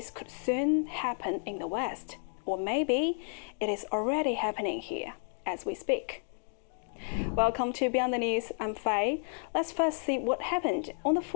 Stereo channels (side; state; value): right; silent; 57 dB below the other